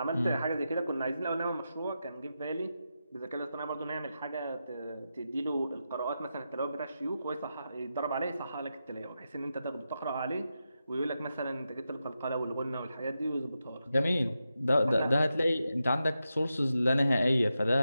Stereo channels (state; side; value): inverted; both; correlation -0.88